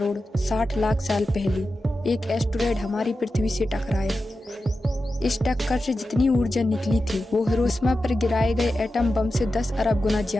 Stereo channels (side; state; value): both; normal; correlation 0.92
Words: 60 लाख साल पहले एक एस्टेरॉयड हमारी पृथ्वी से टकराया। इस टक्कर से जितनी ऊर्जा निकली थी वो हिरोशिमा पर गिराए गए एटम बम से 10 अरब गुना